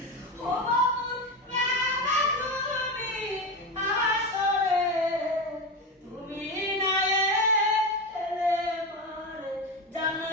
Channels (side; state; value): both; normal; correlation 0.19